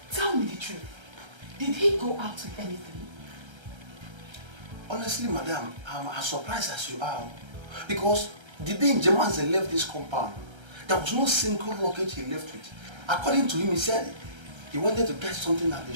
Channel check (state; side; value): late; left; 1.3 ms